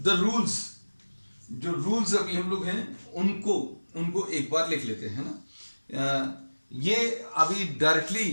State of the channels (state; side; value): inverted; both; correlation -1.00